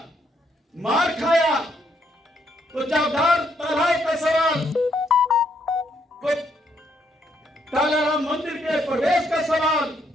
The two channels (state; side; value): normal; both; correlation 0.74